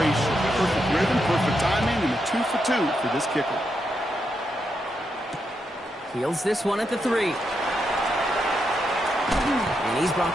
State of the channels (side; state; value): both; normal; correlation 0.83